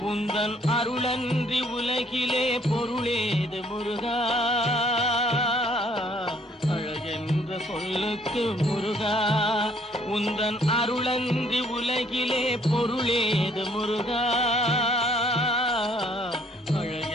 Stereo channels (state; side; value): normal; both; correlation 0.63